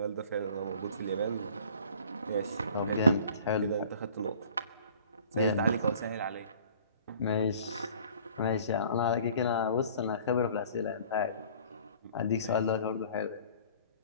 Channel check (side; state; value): both; inverted; correlation -0.50